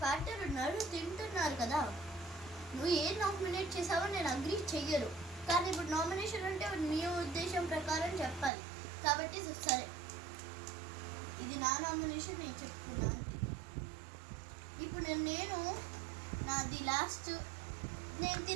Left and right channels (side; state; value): left; drops out; at 8.5 s